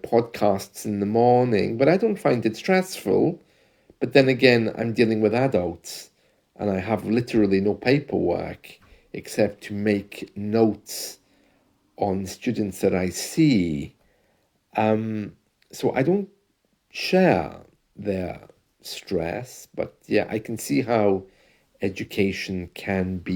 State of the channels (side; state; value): both; identical; correlation 1.00